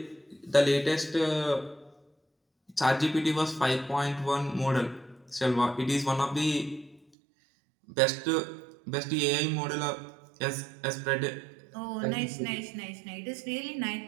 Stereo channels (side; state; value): left; drops out; at 7.0 s